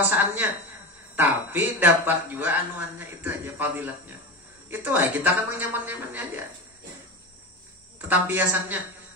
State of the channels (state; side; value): normal; both; correlation 0.24